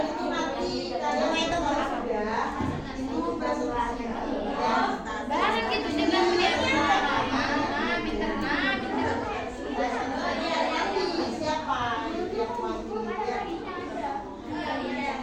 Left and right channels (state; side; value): identical; both; correlation 1.00